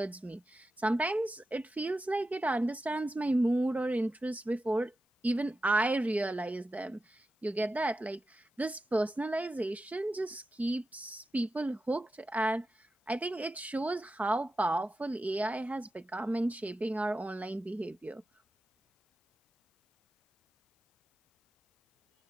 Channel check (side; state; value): both; normal; correlation 0.91